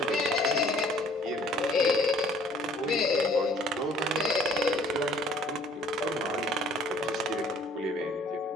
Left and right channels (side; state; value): both; normal; correlation 0.56